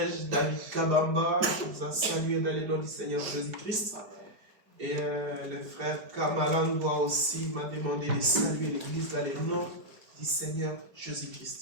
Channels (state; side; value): late; left; 4.9 ms